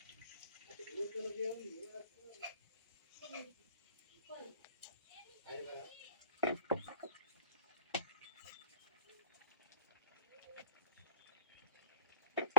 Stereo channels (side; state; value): both; inverted; correlation -0.43